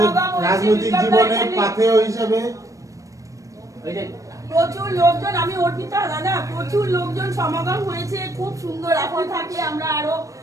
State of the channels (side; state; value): left; late; 0.16 ms